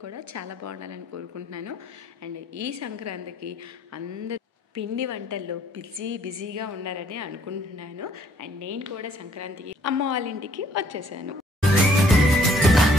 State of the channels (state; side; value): normal; both; correlation 0.63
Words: కూడా చాలా బాగున్నారని కోరుకుంటున్నాను. అండ్ ఈ సంక్రాంతికి అందరూ పిండి వంటల్లో బిజీగా ఉన్నారని అనుకుంటున్నాను. అండ్ నేను కూడా సంక్రాంతికి అమ్మ వాళ్ళ ఇంటికి వచ్చేసాను.